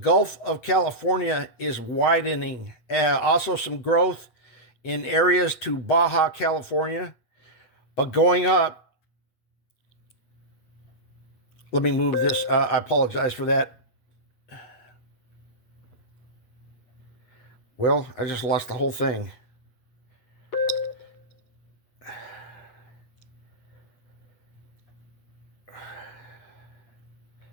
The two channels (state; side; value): late; right; 8.2 ms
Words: of California is widening. Also some growth in areas to Baja California, but going up. Let me move this. I apologize for that. Well, I just lost the whole thing.